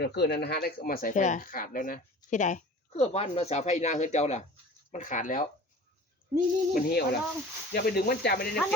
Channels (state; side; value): normal; both; correlation 0.42